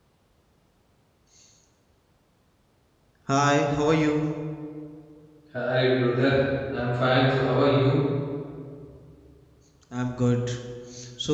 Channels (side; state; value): both; identical; correlation 1.00